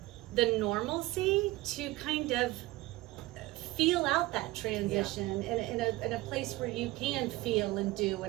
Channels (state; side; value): quieter; left; 19.0 dB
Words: the normalcy to kind of feel out that transition in a place where you can feel and do,